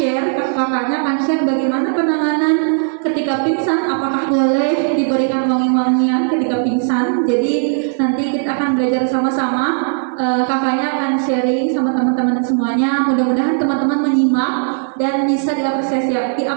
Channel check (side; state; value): left; silent; digital silence